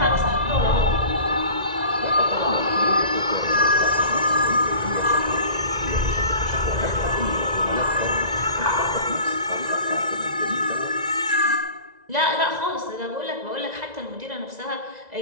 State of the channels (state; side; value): late; left; 2.0 ms